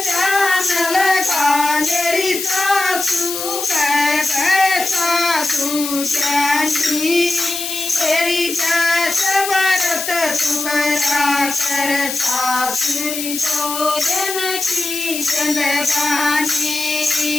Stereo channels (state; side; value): noise; left; hiss, 5 dB below the sound